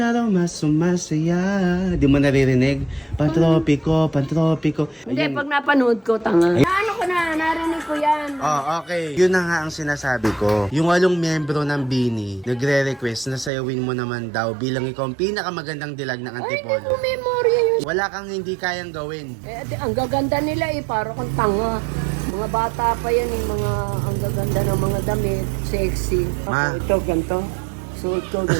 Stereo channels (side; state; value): left; drops out; at 13.5 s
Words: araw mas sumasaya. Di mo naririnig? Pantropiko, pantropiko. Hindi, Ayan. pag napanood ko, tanga. Ano ko na, narinig ko yan. Oh, okay. Yun na nga ang sinasabi ko. Yung 8 miyembro ng Bini, nagre-request na sayawin mo naman daw bilang ikaw ang pinakamagandang dilag ng Ay, hindi Antipolo. ko memorya yun. Wala kang hindi kayang gawin. Eh, ang gaganda nila eh, para kang tanga. Mga bata pa yan eh, ang gaganda ng mga damit, sexy. Ma. Ako, ito, ganito. Suot ko,